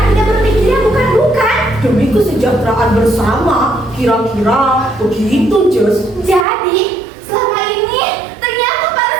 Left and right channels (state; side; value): drops out; left; at 6.5 s